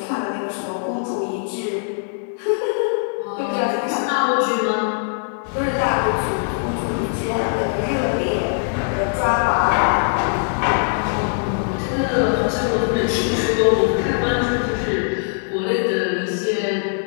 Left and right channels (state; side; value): silent; right; digital silence